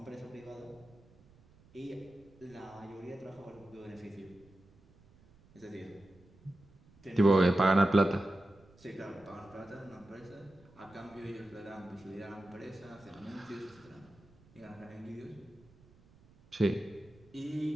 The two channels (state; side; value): noise; right; rumble, 27 dB below the sound